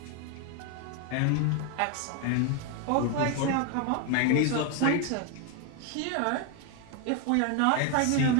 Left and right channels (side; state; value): both; different; correlation 0.01